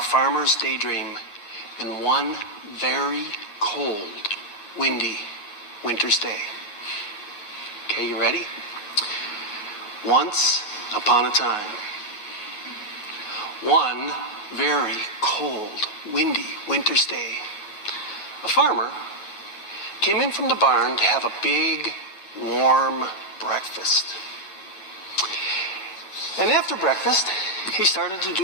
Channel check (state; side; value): late; right; 9.6 ms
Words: farmer's daydream in one very cold, windy winter's day. Okay, you ready? Once upon a time, one very cold, windy winter's day, a farmer came in from the barn to have a big, warm breakfast. And after breakfast, he started to